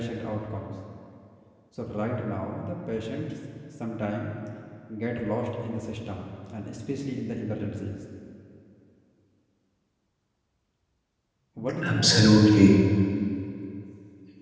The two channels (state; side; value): identical; both; correlation 1.00